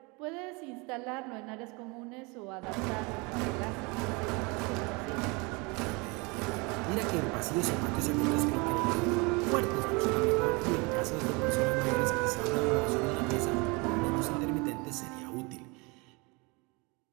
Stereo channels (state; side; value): quieter; left; 28.0 dB